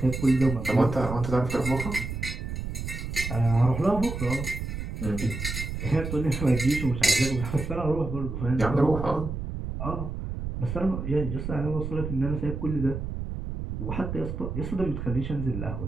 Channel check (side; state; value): right; noise; rumble, 5 dB below the sound